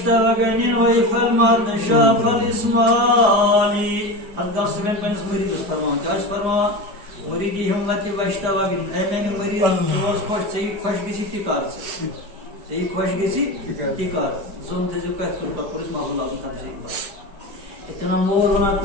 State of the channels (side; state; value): left; late; 4.9 ms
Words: वैफल मातशाफल इस्माली अल्लाह सुबह पन्स मुरीद फरमान क्या फरमान मुरीदी हिम्मत वश्तवगनिन ए मैंने मुरीद रोज खुश सही खुश गसी तिकार सही खुश गसी तिकार जोन तेजु का तुल पर पुलिस माहौल आजम तमसील इतना मोर बना